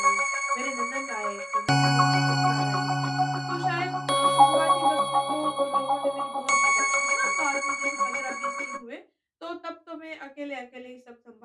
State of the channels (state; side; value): identical; both; correlation 1.00